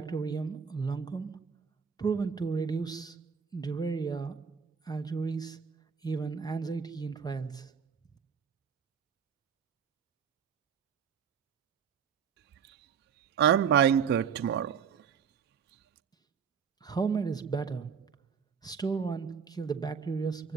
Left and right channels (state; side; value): quieter; left; 6.8 dB